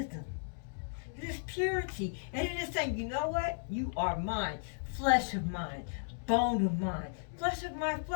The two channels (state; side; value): silent; right; digital silence